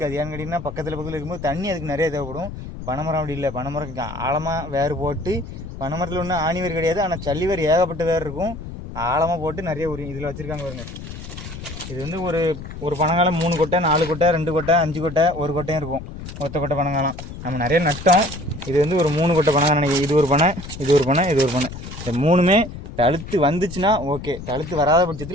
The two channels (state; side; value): noise; left; rumble, 11 dB below the sound